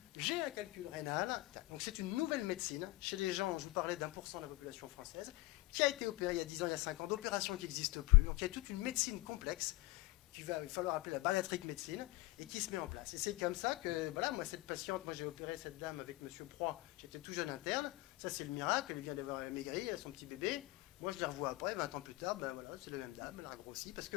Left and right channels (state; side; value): quieter; right; 20.5 dB